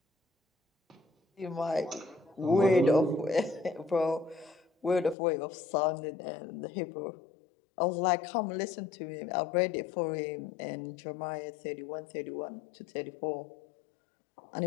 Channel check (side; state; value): right; drops out; at 5.2 s